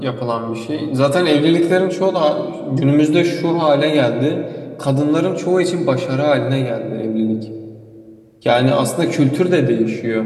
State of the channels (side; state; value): both; identical; correlation 1.00